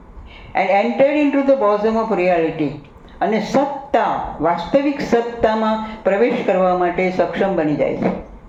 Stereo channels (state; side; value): identical; both; correlation 1.00